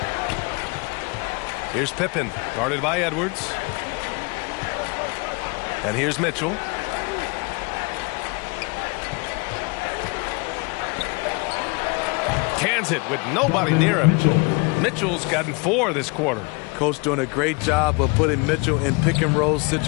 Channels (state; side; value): quieter; right; 29.9 dB